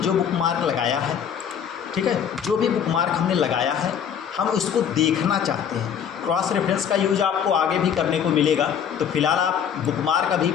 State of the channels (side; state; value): right; quieter; 8.2 dB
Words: बुकमार्क लगाया है, ठीक है, जो भी बुकमार्क हमने लगाया है हम उसको देखना चाहते हैं। क्रॉस रेफरेंस का यूज आपको आगे भी करने को मिलेगा, तो फिलहाल आप बुकमार्क अभी